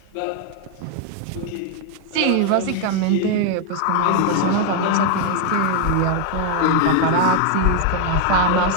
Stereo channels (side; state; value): both; different; correlation 0.00